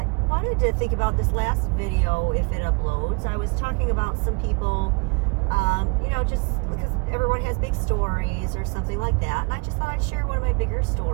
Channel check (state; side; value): quieter; left; 31.8 dB